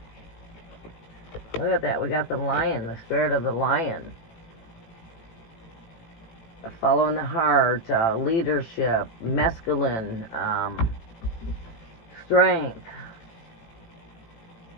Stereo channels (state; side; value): late; right; 18 ms